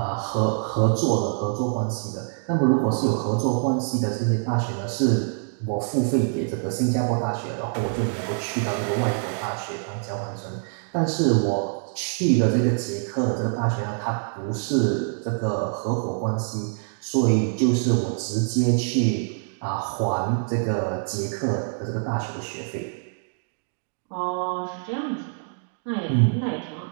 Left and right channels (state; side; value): silent; left; digital silence